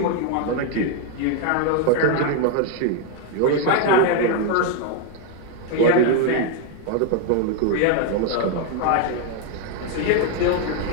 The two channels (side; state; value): both; different; correlation 0.01